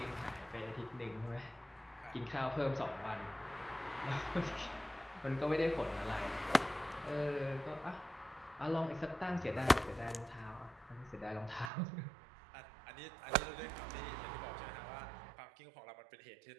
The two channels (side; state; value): left; drops out; at 11.7 s